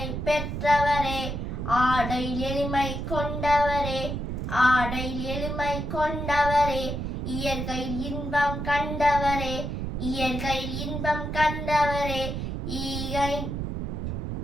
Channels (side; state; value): right; noise; rumble, 3 dB below the sound